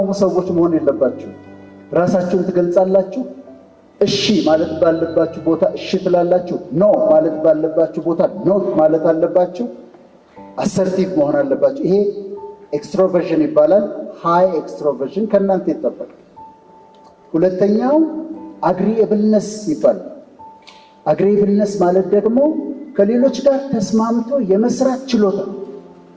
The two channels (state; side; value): identical; both; correlation 1.00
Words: ሰዎች መሆን የለባችሁ። ራሳችሁን ትገልጻላችሁ። እሺ ማለት ባለባችሁ ቦታ እሺ ትላላችሁ። ኖ ማለት ባለባችሁ ቦታ ኖ ማለት አለባችሁ። አሰርቲቭ መሆን አለባችሁ። ይሄ ኤክስትሮቨርሽን ይባላል። ሃይ ኤክስትሮቨርሽን ከእናንተ ይጠበቃል። ሁለተኛው አግሪኤብልነስ ይባላል። አግሪኤብልነስ ማለት ደግሞ ከሌሎች ጋር ተስማምቶ የመስራት ችሎታ።